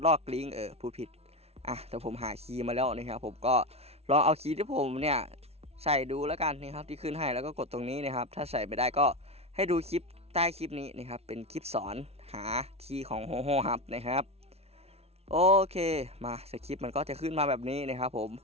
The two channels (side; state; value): left; late; 0.30 ms